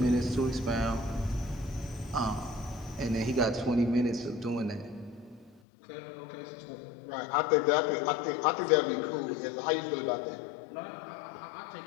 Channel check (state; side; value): drops out; right; at 5.6 s